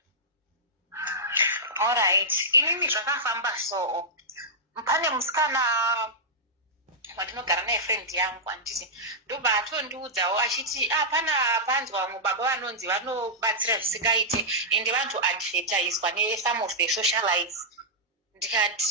Alright. Inini zvakafamba so. Pane musikana wandinogara naye friend yangu anditi ndobva atondiudzawo achiti pana panzwa vamwe baba vanonzi vanobatsira zvisingaite ende vantu advertiswa ne-some of the socialites.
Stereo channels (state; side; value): normal; both; correlation -0.10